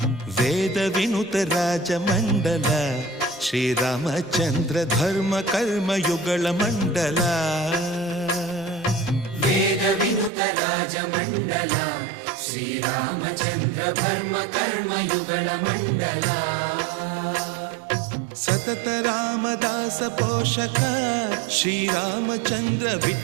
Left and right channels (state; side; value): drops out; left; at 10.3 s